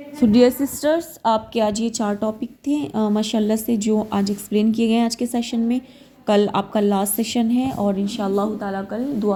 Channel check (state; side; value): identical; both; correlation 1.00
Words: سو ڈیئر سسٹرز، آپ کے آج یہ 4 ٹاپک تھے ماشاءاللہ سے جو آج ایکسپلین کیے گئے ہیں آج کے سیشن میں۔ کل آپ کا لاسٹ سیشن ہے اور انشاءاللہ تعالیٰ کل